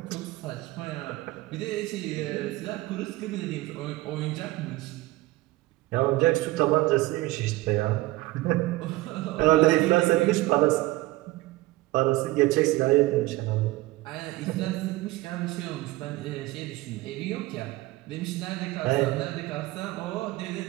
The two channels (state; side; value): quieter; left; 19.1 dB